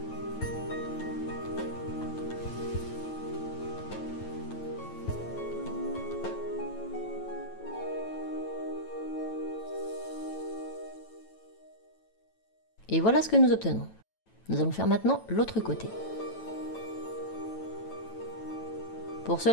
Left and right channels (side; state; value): right; late; 9.1 ms